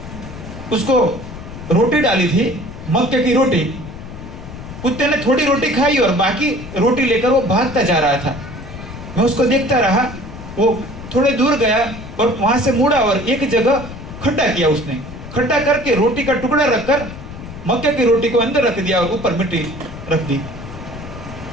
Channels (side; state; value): left; noise; rumble, 12 dB below the sound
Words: उसको रोटी डाली थी, मक्के की रोटी। कुत्ते ने थोड़ी रोटी खाई और बाकी रोटी लेकर वो भागता जा रहा था। मैं उसको देखता रहा। वो थोड़े दूर गया और वहां से मुड़ा और एक जगह खड्डा किया। उसने खड्डा करके रोटी का टुकड़ा रखकर मक्के की रोटी को अंदर रख दिया और ऊपर मिट्टी रख दी।